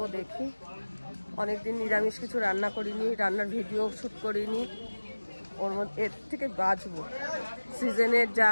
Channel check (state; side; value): inverted; both; correlation -1.00